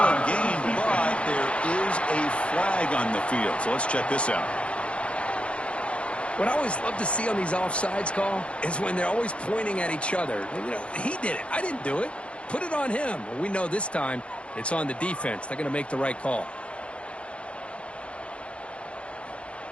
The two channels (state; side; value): late; right; 0.060 ms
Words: gain, but there is a flag on the field. So let's check this out. What I always love to see on these offsides call is when they're always pointing at each other. You know, he did it. I didn't do it. Put it on him. Well, we know this time it's on the defense. They're going to make the right call.